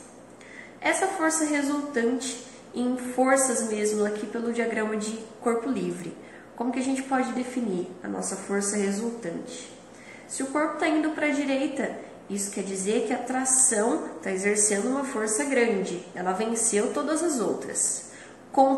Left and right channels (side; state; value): both; identical; correlation 1.00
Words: Essa força resultante em forças mesmo aqui pelo diagrama de corpo livre. Como que a gente pode definir a nossa força resultante? Se o corpo está indo para a direita, isso quer dizer que a tração está exercendo uma força grande. Ela venceu todas as outras.